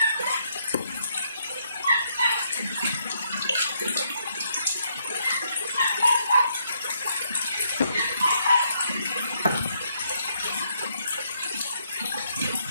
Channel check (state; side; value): inverted; both; correlation -0.74